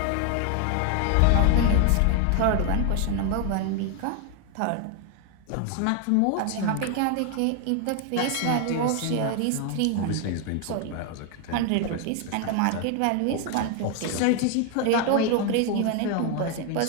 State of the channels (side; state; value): both; different; correlation 0.01